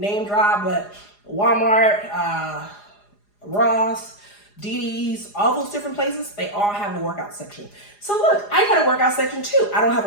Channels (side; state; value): right; late; 4.9 ms